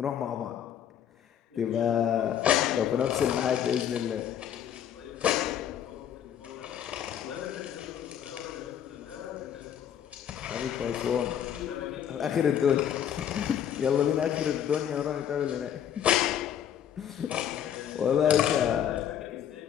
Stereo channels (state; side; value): quieter; right; 9.5 dB